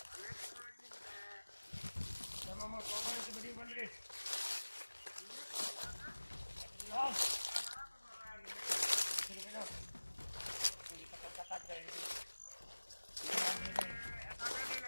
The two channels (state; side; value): inverted; both; correlation -1.00